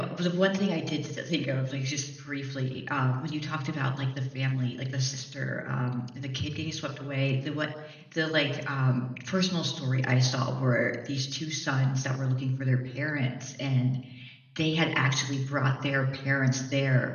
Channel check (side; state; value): both; identical; correlation 1.00